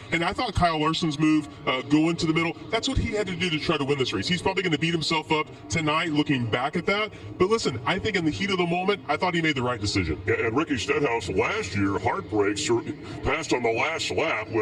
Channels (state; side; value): identical; both; correlation 1.00